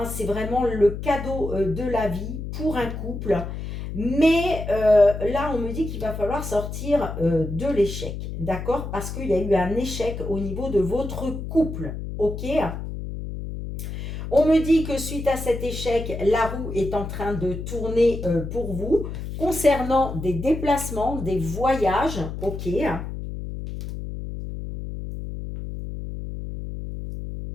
C'est vraiment le cadeau de la vie pour un couple. Mais là, on me dit qu'il va falloir sortir de l'échec. D'accord? Parce qu'il y a eu un échec au niveau de votre couple. OK? On me dit que suite à cet échec, la roue est en train de tourner pour vous concernant des déplacements, des voyages. OK?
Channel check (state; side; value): noise; left; hum, 7 dB below the sound